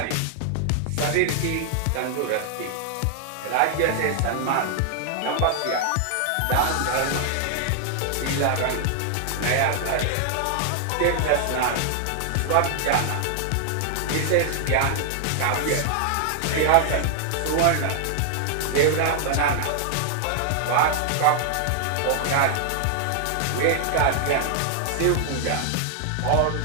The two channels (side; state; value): both; different; correlation 0.00